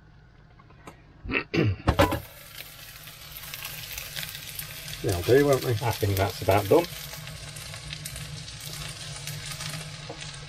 They'll do, won't they? I think that's about done.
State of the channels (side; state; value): both; identical; correlation 1.00